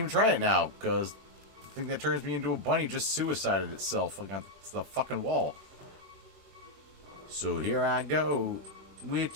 try it now, because the thing that turns me into a bunny just suicided itself against the fucking wall. So here I go, with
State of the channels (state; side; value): late; left; 21 ms